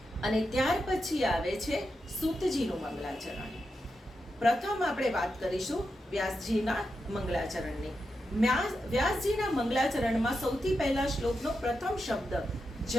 અને ત્યાર પછી આવે છે સૂતજીનું મંગલાચરણ. પ્રથમ આપણે વાત કરીશું વ્યાસજીના મંગલાચરણની. વ્યાસજીના મંગલાચરણમાં સૌથી પહેલા શ્લોકનો પ્રથમ શબ્દ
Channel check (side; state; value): both; normal; correlation 0.87